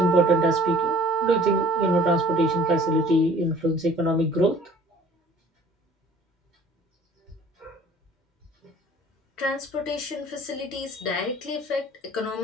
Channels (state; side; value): normal; both; correlation 0.51